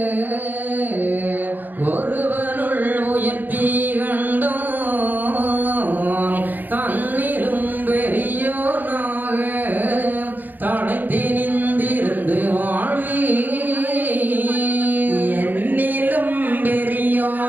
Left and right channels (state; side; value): late; left; 0.086 ms